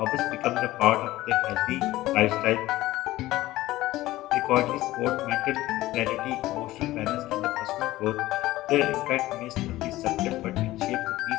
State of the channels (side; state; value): right; quieter; 16.7 dB